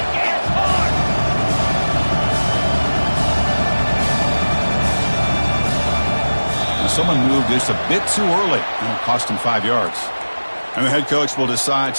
Someone moved this a bit too early, and it cost him 5 yards. And the head coach will decide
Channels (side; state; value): both; inverted; correlation -1.00